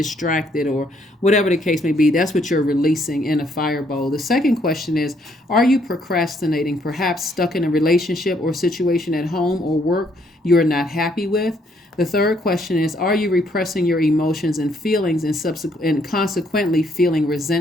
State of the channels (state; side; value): normal; both; correlation 0.69